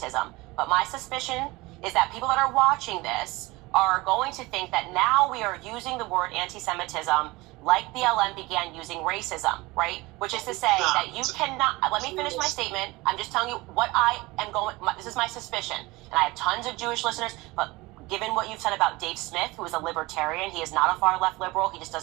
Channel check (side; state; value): left; quieter; 21.9 dB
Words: But my suspicion is that people that are watching this are going to think that now we are using the word anti-Semitism like BLM began using racism, right? Which is to say that you cannot, let me finish my statement. I'm just telling you what I am going, this is my suspicion. And I have tons of Jewish listeners, but given what you've said about Dave Smith, who is a libertarian, he is not a far left liberal. He just